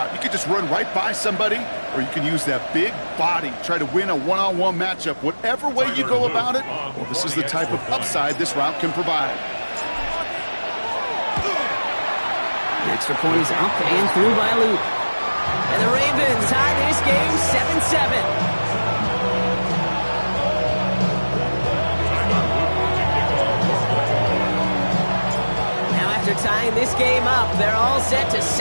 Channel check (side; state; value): both; inverted; correlation -1.00